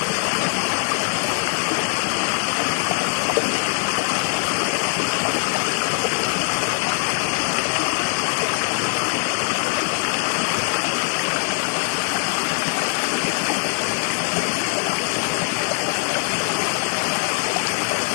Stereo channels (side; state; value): right; silent; digital silence